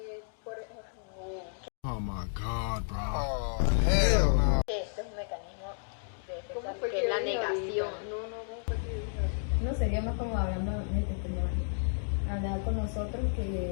Por ejemplo, Oh my god, bro. Este es un mecanismo de defensa, ¿Cómo fue que que es la dijo negación. ahorita? ¿Cómo fue que dijo? No sería más como hablando de este tema, hablar con nosotros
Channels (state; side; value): silent; right; digital silence